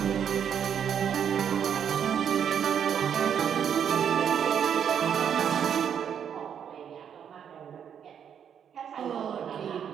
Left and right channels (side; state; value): left; quieter; 8.3 dB